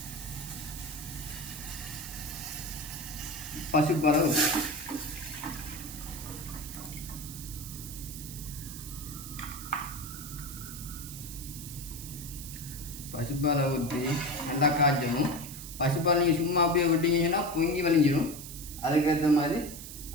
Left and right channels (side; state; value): right; noise; hiss, 11 dB below the sound